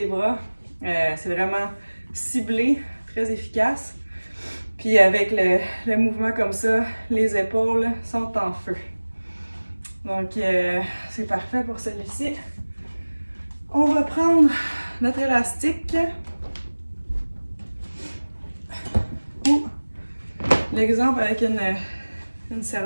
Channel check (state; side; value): inverted; both; correlation -1.00